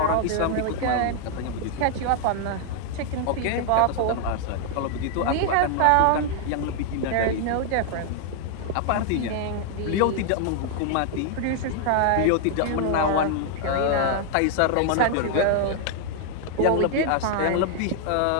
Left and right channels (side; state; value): both; different; correlation 0.00